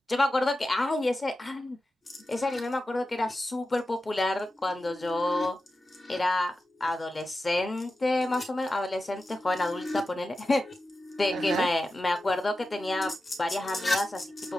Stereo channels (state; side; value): normal; both; correlation 0.92